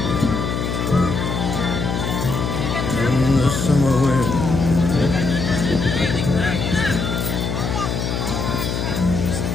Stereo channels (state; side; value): noise; left; hum, 2 dB below the sound